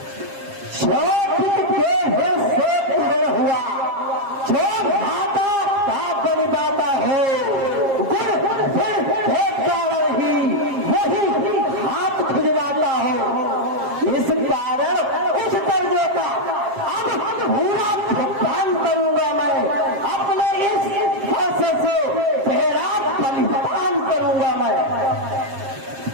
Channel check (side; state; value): left; late; 7.5 ms